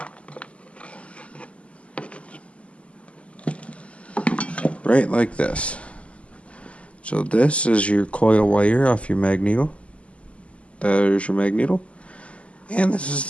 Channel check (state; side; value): late; right; 0.060 ms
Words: Right like this. So this is your coil wire off your magneto. There's your magneto. And this is